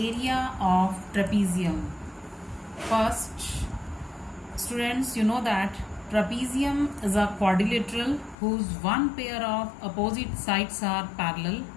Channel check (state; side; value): drops out; right; at 8.3 s